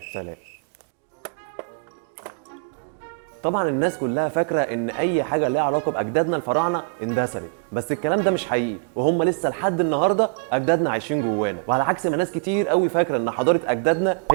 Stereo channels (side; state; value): left; quieter; 37.2 dB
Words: سلام. طبعا الناس كلها فاكره ان اي حاجه ليها علاقه باجدادنا الفراعنه اندثرت، بس الكلام ده مش حقيقي، وهم لسه لحد النهارده اجدادنا عايشين جوانا، وعلى عكس ما ناس كتير قوي فاكره ان حضاره اجدادنا